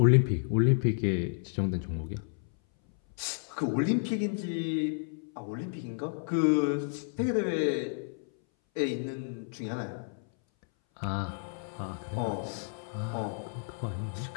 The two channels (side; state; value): right; silent; 57 dB below the other